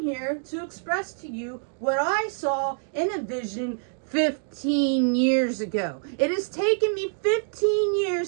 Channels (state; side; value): silent; left; digital silence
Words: here to express to you what I saw in a vision 15 years ago. It has taken me 15